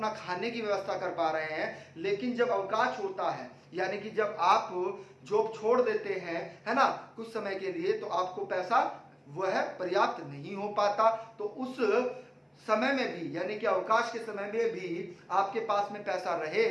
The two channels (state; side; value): identical; both; correlation 1.00